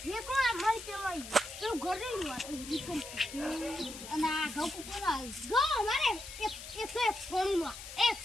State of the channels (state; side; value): noise; left; hiss, 12 dB below the sound